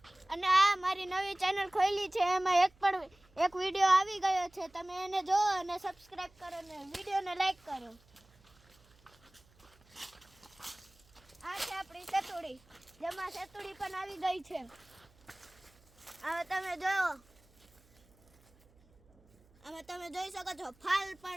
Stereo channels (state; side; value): noise; right; hum, 30 dB below the sound